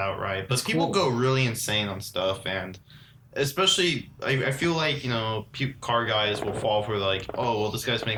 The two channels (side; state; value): both; identical; correlation 1.00